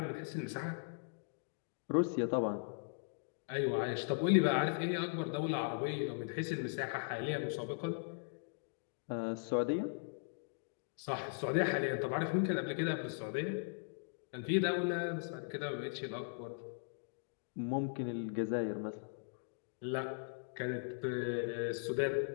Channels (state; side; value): silent; right; digital silence